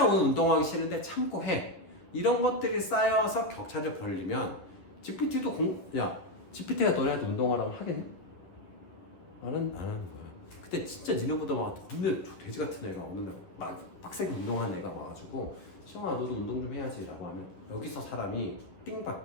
오늘 운동하기 싫은데 참고 해. 이런 것들이 쌓여서 격차를 벌리면 GPT도 GPT가 너네한테 운동하라고 하겠니? 나는 안 하는 거야. 근데 진짜 니네보다 막 없는 돼지 같은 애가 어느 날 막 빡세게 운동한 애가 와가지고 시영아 너도 운동 좀 해야지 라고 하면 여기서 사람이 띵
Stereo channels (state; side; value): late; right; 11 ms